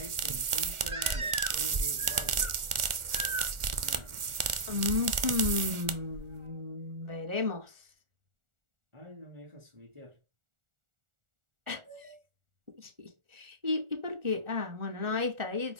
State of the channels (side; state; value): left; late; 1.4 ms